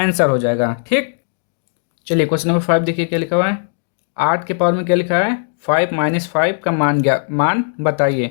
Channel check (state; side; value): silent; right; digital silence